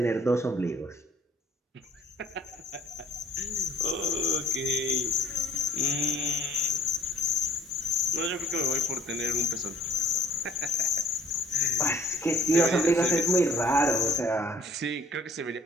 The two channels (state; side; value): normal; both; correlation 0.55